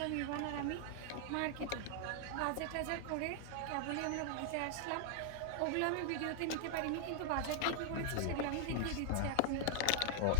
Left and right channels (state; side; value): different; both; correlation 0.00